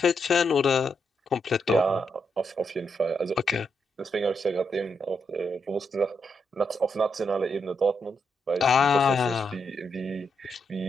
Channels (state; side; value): normal; both; correlation 0.81